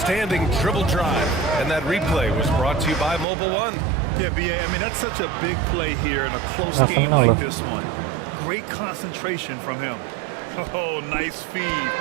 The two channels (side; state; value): left; drops out; at 3.2 s